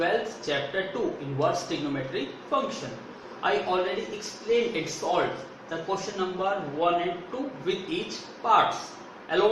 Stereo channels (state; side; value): identical; both; correlation 1.00